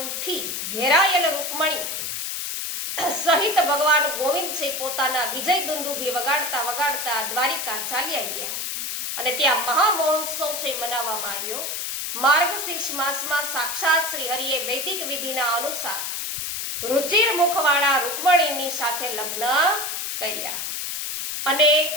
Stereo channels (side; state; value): left; noise; hiss, 4 dB below the sound